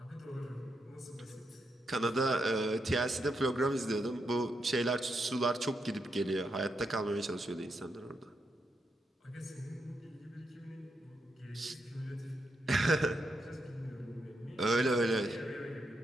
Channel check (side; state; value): both; normal; correlation 0.82